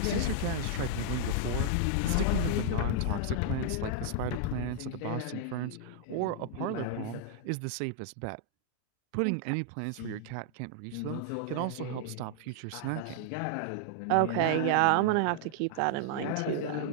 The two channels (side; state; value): both; different; correlation -0.01